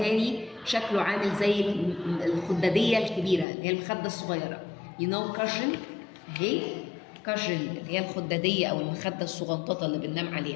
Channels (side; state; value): right; drops out; at 3.5 s